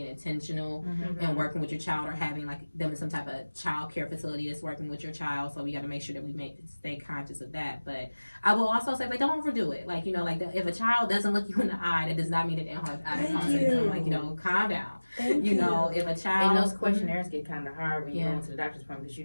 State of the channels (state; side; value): inverted; both; correlation -1.00